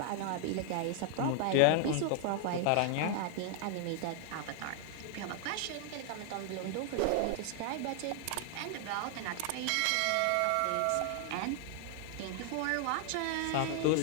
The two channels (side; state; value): both; different; correlation 0.00